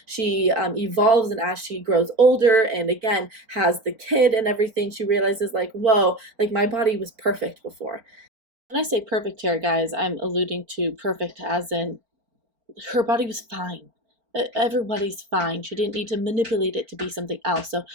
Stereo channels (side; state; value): left; late; 4.4 ms